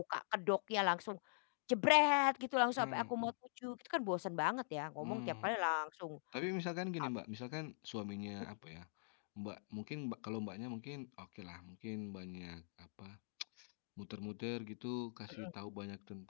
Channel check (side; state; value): right; silent; digital silence